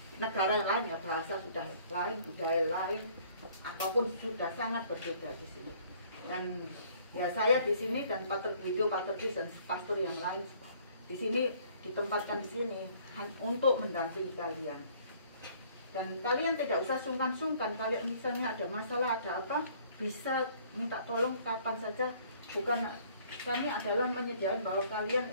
negara lain ya bahasa sudah lain budaya lain apapun sudah sangat berbeda di sini. Dan ya saya di sini dan Pater Guido, Pater Chris dan pastor yang lain di sini ditempatkan di sini untuk mendampingi kalian. Dan kalian tidak usah sungkan-sungkan, kalian misalnya ada masalah, ada apa, bisa minta tolong kapan saja. Bukan kami adalah menyediakan bahwa kalian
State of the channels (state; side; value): inverted; both; correlation -0.59